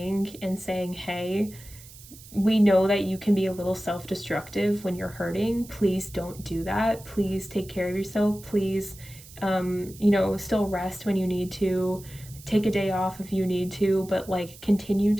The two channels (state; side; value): noise; right; hiss, 19 dB below the sound